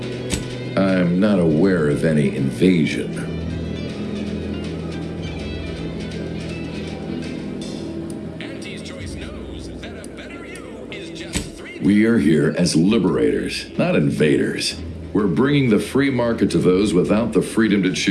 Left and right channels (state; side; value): identical; both; correlation 1.00